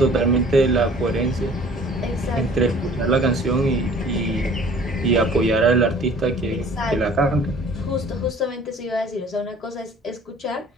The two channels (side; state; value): both; normal; correlation 0.50